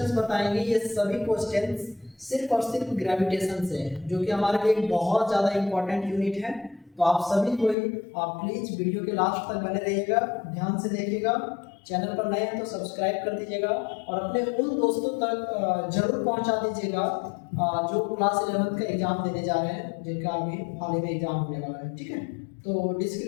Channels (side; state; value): right; drops out; at 7.8 s